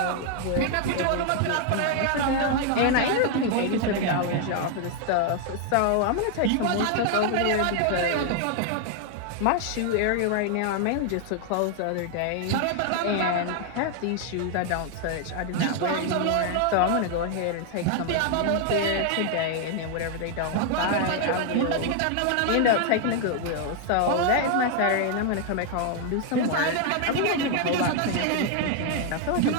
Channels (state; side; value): different; both; correlation 0.00